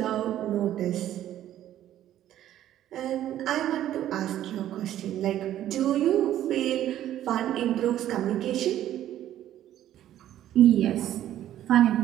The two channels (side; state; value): left; quieter; 12.2 dB